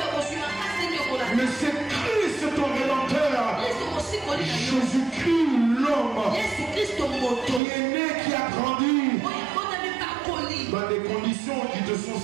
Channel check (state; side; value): drops out; left; at 7.6 s